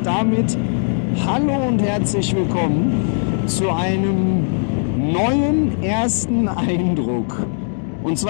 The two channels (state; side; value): silent; right; digital silence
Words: damit hallo und herzlich willkommen zu einem neuen ersten Eindruck. Und